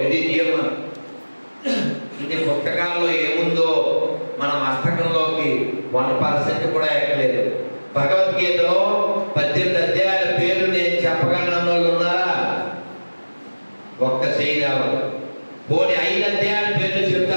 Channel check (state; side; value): inverted; both; correlation -1.00